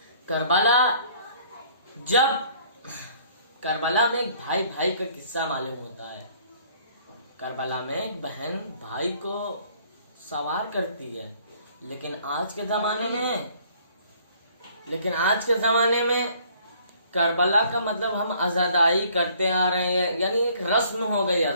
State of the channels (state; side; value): inverted; both; correlation -0.59